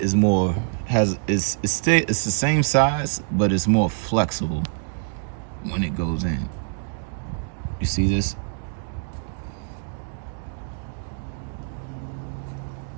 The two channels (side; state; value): left; silent; 62 dB below the other